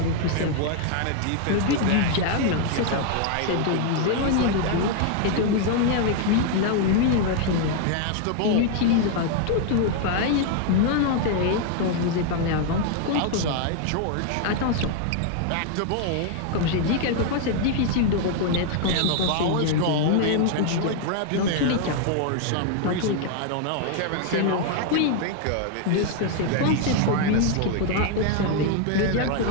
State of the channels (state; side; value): different; both; correlation 0.00